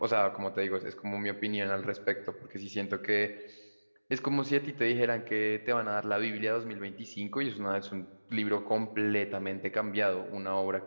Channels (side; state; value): both; inverted; correlation -1.00